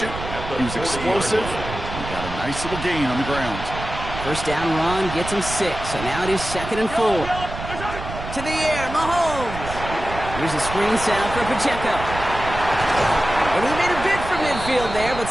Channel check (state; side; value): noise; right; rumble, 9 dB below the sound